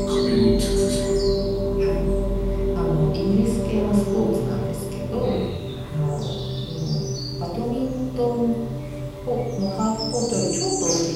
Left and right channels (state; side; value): identical; both; correlation 1.00